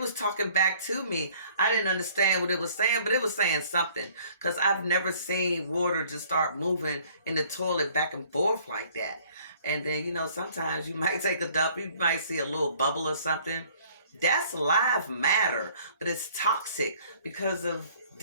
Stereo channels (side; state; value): both; inverted; correlation -0.57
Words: talking back to me. I didn't understand what it was saying, but it was saying something. Because I've never seen water just start moving in the toilet back and forth like that. And then, you know, sometimes you might take a dump. You might see a little bubble or something. That's live matter. But it's toxic because of